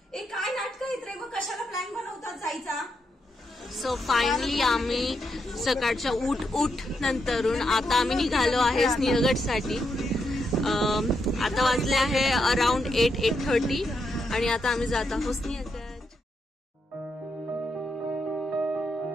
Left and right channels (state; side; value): normal; both; correlation 0.82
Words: ए काय नाटक आहेत रे? मग कशाला प्लॅन बनवतात जायचा? सो फायनली आम्ही सकाळच्या उठ नंतरून आता आम्ही निघालो आहे सिंहगडसाठी. आता वाजले आहे अराउंड 8:30 आणि आता आम्ही जात आहोत सिंहगड.